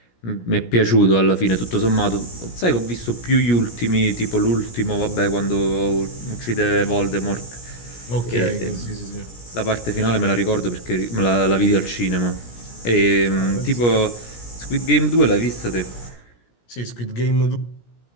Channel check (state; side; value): late; right; 17 ms